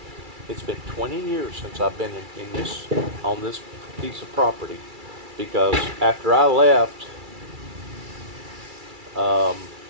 It's been 20 years since I've been on this piece of property, because after I left, now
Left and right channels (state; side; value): late; left; 2.3 ms